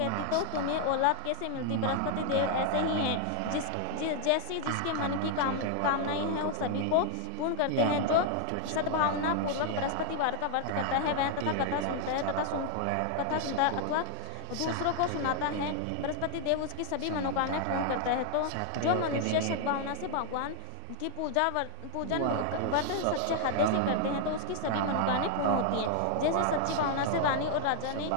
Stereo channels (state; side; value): different; both; correlation 0.00